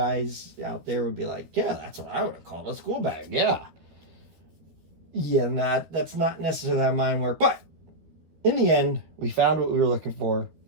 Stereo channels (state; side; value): late; left; 13 ms